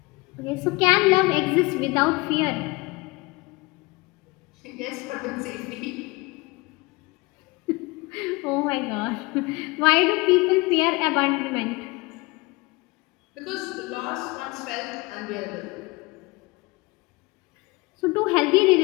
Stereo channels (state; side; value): quieter; right; 24.2 dB